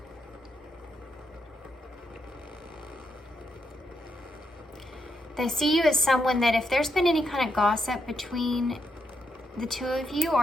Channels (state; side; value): normal; both; correlation 0.80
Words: They see you as someone that if there's been any kind of gossip between the two of you,